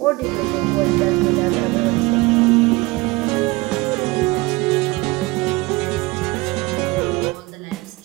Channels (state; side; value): quieter; left; 22.9 dB